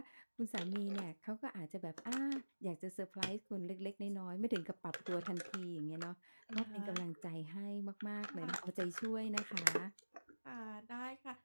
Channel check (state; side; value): inverted; both; correlation -1.00